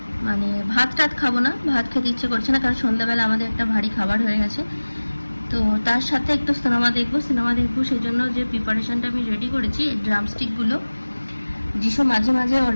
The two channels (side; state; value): both; inverted; correlation -1.00